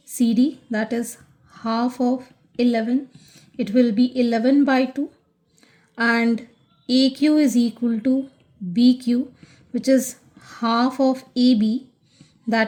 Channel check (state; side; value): identical; both; correlation 1.00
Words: CD that is half of 11, it will be 11/2 and AQ is equal to BQ which is half of AB